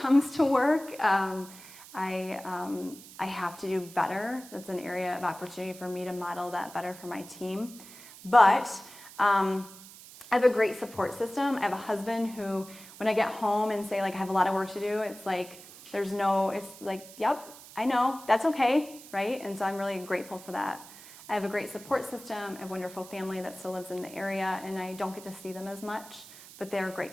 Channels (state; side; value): noise; right; hiss, 18 dB below the sound